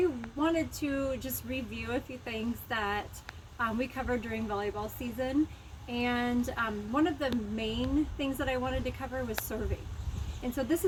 wanted to just review a few things that we covered during volleyball season. And one of the main things that I wanted to cover was serving. And so this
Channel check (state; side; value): identical; both; correlation 1.00